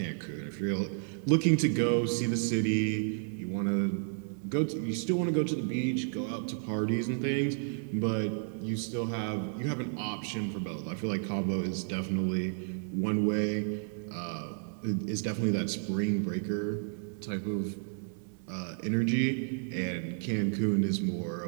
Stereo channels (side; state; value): left; silent; digital silence